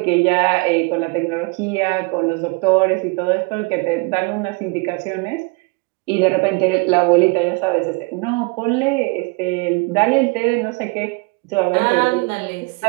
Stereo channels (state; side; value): quieter; left; 29.0 dB